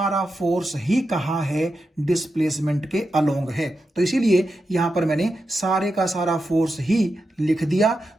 फोर्स ही कहां है, डिस्प्लेसमेंट के अलोंग है। तो इसीलिए यहां पर मैंने सारे का सारा फोर्स ही लिख दिया।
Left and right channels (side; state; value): both; normal; correlation 0.89